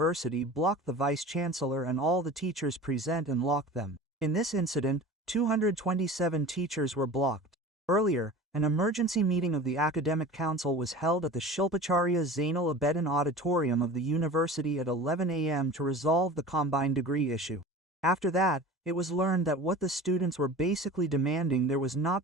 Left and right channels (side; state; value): both; normal; correlation 0.37